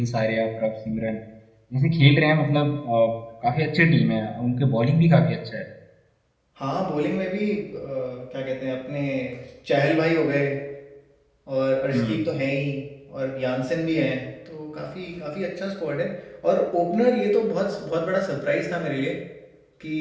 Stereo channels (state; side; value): identical; both; correlation 1.00